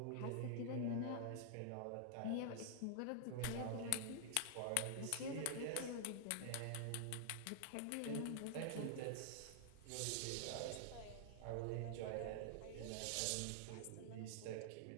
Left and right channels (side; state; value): both; different; correlation -0.01